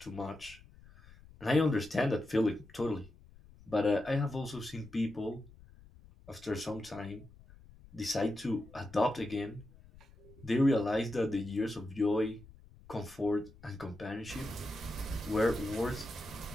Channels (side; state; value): left; noise; rumble, 22 dB below the sound